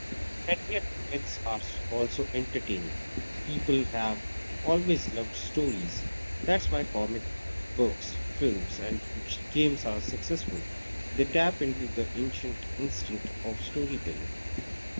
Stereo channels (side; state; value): both; inverted; correlation -1.00